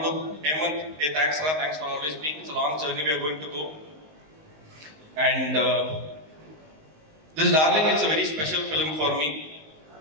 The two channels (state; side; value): late; left; 19 ms